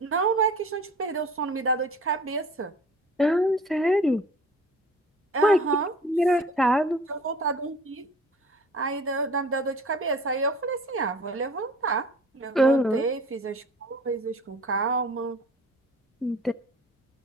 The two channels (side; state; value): both; normal; correlation 0.45